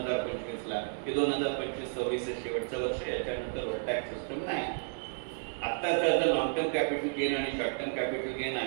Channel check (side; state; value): left; silent; digital silence